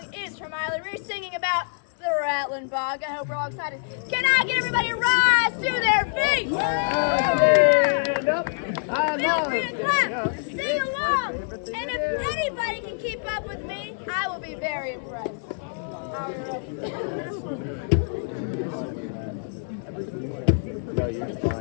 is from Miley Reese singing about the Rattlin Bog. I hope we're all excited. Can I get everybody to rise to their feet? Stand up. Feel free to clap, sing along, and if anybody can keep up with me, I will be very impressed. Are we ready? No, you're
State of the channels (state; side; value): silent; right; digital silence